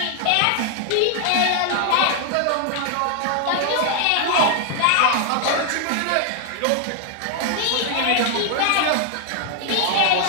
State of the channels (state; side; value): different; both; correlation 0.00